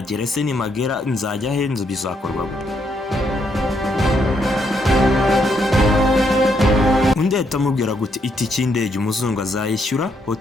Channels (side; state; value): both; normal; correlation 0.75